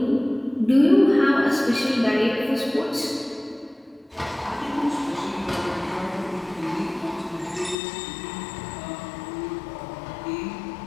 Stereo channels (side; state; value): right; drops out; at 7.8 s